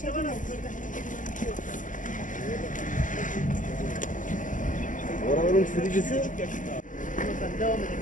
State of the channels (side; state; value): right; late; 0.38 ms